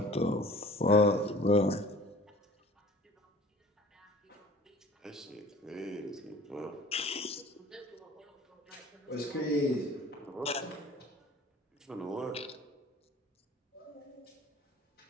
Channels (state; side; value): normal; both; correlation 0.46